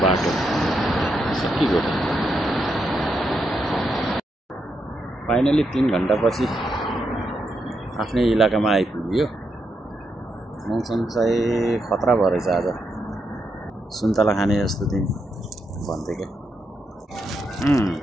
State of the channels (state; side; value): normal; both; correlation 0.81